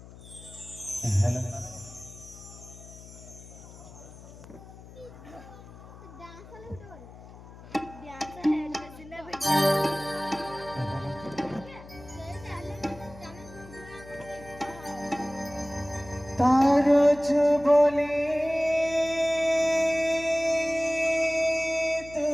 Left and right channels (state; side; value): noise; left; hum, 18 dB below the sound